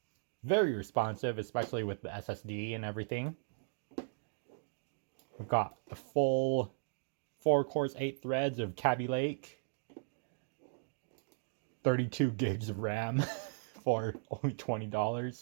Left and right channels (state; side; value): silent; left; digital silence